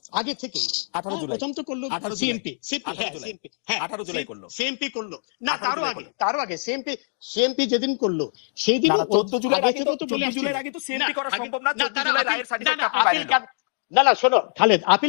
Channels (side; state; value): right; silent; digital silence